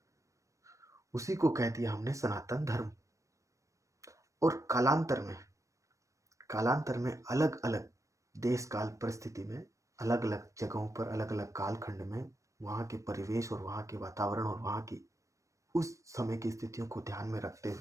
उसी को कह दिया हमने सनातन धर्म। और कालांतर में अलग अलग देश काल परिस्थिति में, अलग अलग जगहों पर, अलग अलग कालखंड में वहाँ के परिवेश और वहाँ के वातावरण और वहाँ की उस समय की स्थितियों को ध्यान में रखते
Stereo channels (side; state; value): left; late; 0.15 ms